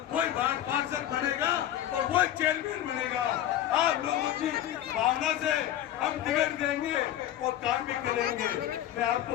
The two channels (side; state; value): right; quieter; 12.0 dB